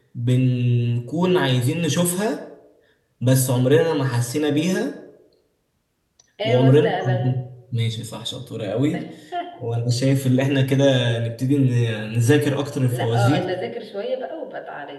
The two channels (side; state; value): both; identical; correlation 1.00